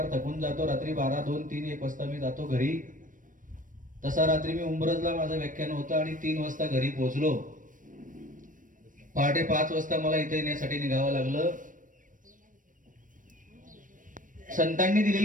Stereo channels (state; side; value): late; left; 0.38 ms